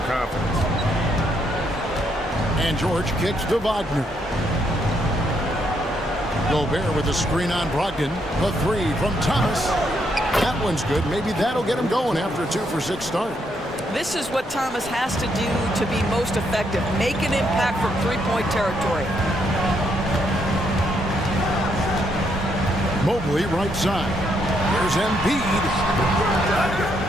confidence. And George kicks to Wagner. Gobert with a screen on Brogdon. The 3 from Thomas. That one's good. Maybe that'll get him going after a 2-for-6 start. This is what Thomas has to do to be most effective. Make an impact from three-point territory. Mobley right side. There's Embiid.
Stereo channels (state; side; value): normal; both; correlation 0.75